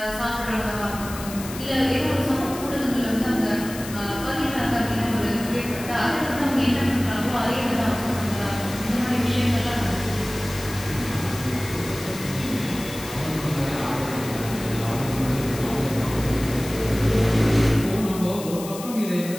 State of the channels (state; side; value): noise; left; hiss, 12 dB below the sound